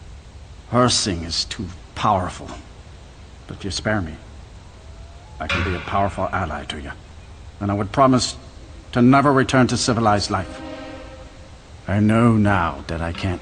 Hersing is too powerful. But if you spare me, I can be a powerful ally to you. And I would promise to never return to civilized life. I know now that I can't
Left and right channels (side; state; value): both; identical; correlation 1.00